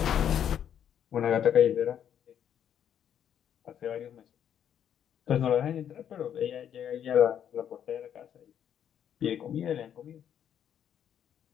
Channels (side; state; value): right; quieter; 9.4 dB